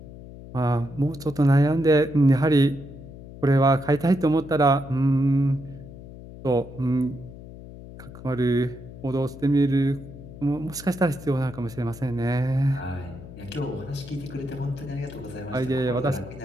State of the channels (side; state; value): left; noise; hum, 15 dB below the sound